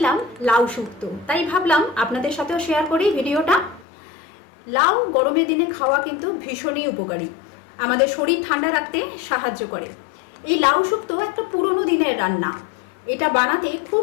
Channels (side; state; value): right; drops out; at 3.9 s